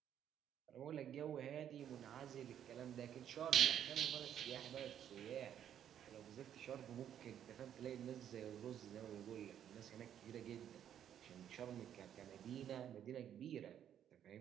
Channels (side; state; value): left; quieter; 9.8 dB